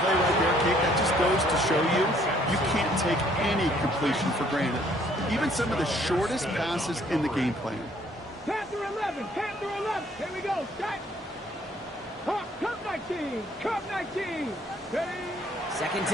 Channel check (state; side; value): normal; both; correlation 0.63